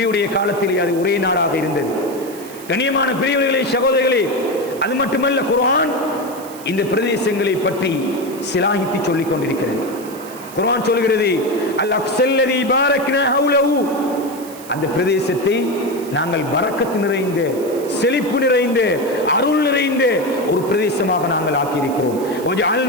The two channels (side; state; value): right; noise; hiss, 18 dB below the sound